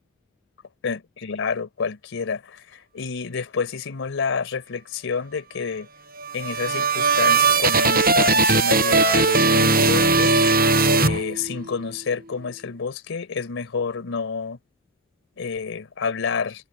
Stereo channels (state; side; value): normal; both; correlation -0.11